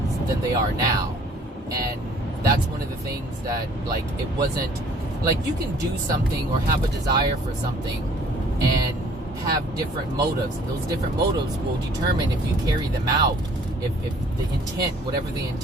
than they are now. And that's one of the things that, like, it wasn't like you can do something or have a desire for something and have different motives. Those different motives will determine if you carry them out. If the intent, whatever the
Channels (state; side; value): normal; both; correlation 0.56